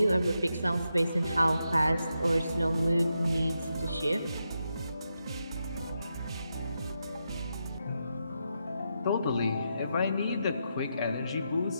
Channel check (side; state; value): both; inverted; correlation -0.85